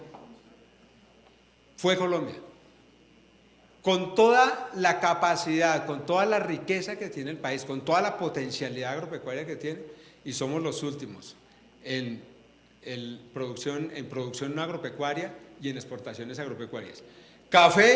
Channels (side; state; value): both; identical; correlation 1.00